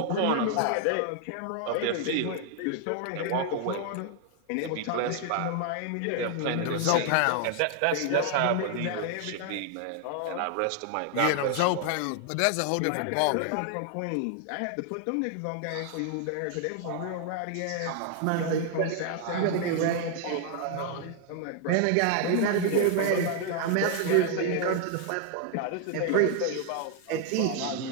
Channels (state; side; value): different; both; correlation 0.00